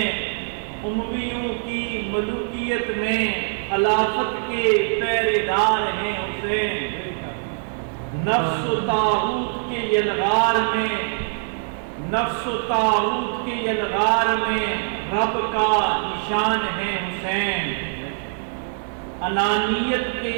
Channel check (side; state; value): left; silent; digital silence